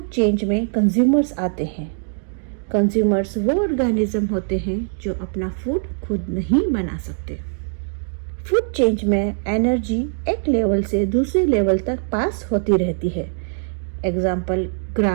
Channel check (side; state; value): left; silent; 65 dB below the other